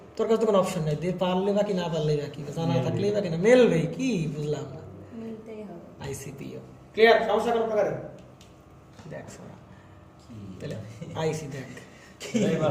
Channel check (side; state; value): both; identical; correlation 1.00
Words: তোর কাছে তো কোনো অপশন নাই, দিয়ে পারলে বাকি না পারলেই বাকি, জানা থাকলেই বাকি না, মেলবে কি বুঝলাম না। মিলতেই হবে। ICPO clear? সমস্যা কোনো প্রকারের? দেখ সোনা, তাহলে আইসি দেখ